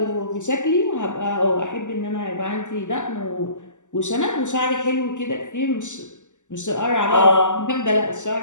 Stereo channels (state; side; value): late; right; 0.85 ms